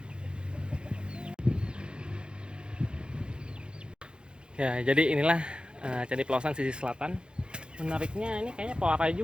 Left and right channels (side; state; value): left; late; 0.052 ms